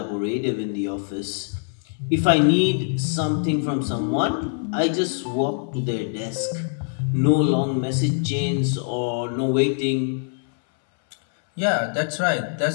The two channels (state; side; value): silent; right; 63 dB below the other